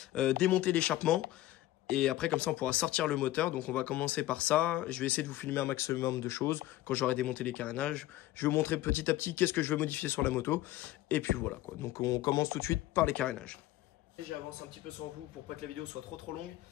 démonter l'échappement. Et après comme ça on pourra sortir le moteur. Donc on va commencer par ça. Je vais essayer de vous filmer un maximum de choses quand j'aurai démonté les carénages. Je vais vous montrer petit à petit qu'est-ce que je veux modifier sur la moto. Et puis voilà quoi. Donc on commence tout de suite par les carénages. J'avance un petit peu sans vous pour pas que la vidéo soit trop longue.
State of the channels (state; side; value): quieter; right; 15.6 dB